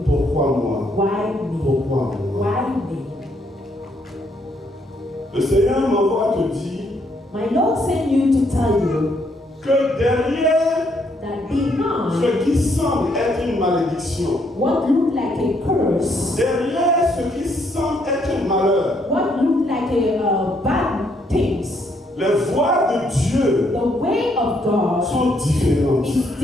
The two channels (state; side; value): normal; both; correlation 0.72